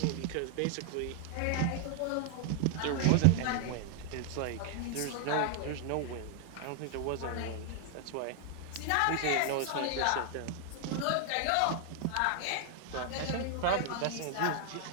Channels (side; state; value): both; different; correlation 0.00